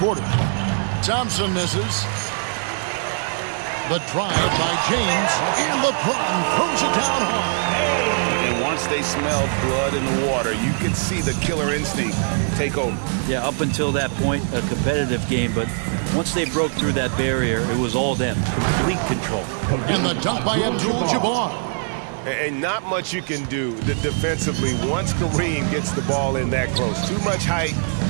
Thompson misses. The drive by James. And LeBron throws it down hard. And once they smelled blood in the water, you could see the killer instinct take over. Yeah, up until that point, a competitive game, but once they broke through that barrier, it was all them. Complete control. And the dunk by Abdul-Jabbar. And not much you can do defensively once Kareem gets the ball in that close. Too much height,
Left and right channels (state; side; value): silent; left; 64 dB below the other